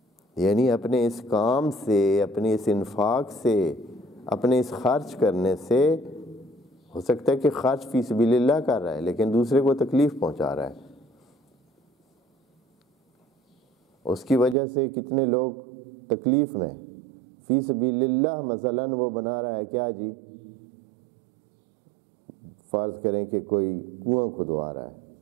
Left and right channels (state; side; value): drops out; left; at 14.6 s